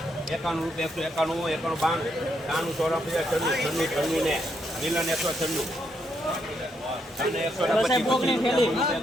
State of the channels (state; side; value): normal; both; correlation 0.77